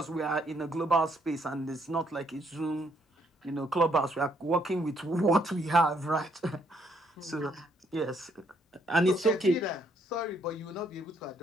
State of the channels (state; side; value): normal; both; correlation 0.71